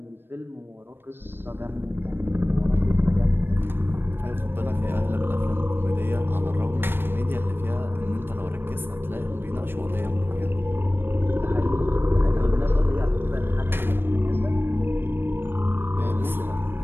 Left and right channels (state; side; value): late; left; 0.10 ms